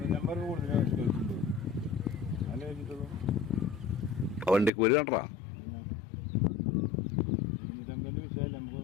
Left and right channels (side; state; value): right; drops out; at 4.7 s